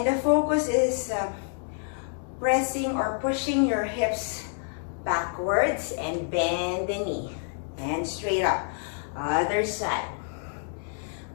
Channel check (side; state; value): right; silent; 58 dB below the other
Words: the focus is pressing or pushing your hips backwards and bend the knee. And straight up. Other side.